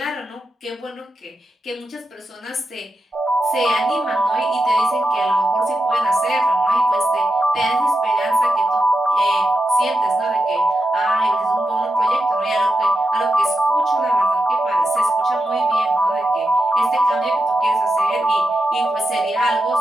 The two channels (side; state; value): both; normal; correlation 0.87